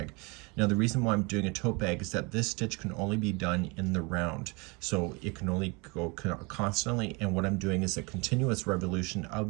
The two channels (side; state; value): left; quieter; 28.4 dB